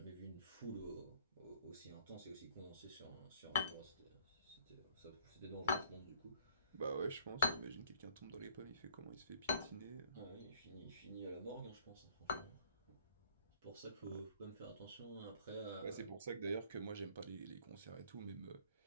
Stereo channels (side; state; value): both; inverted; correlation -0.59